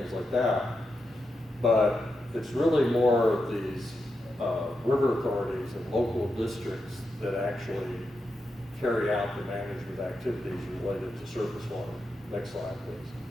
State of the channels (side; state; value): both; normal; correlation 0.86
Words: like that. But it's really more of these river authorities and local districts that actually carry out the management activities related to surface water. Next slide, please.